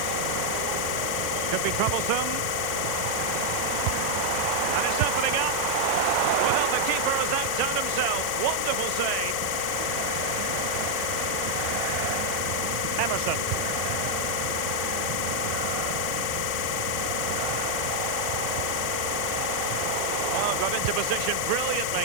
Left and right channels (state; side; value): different; both; correlation 0.00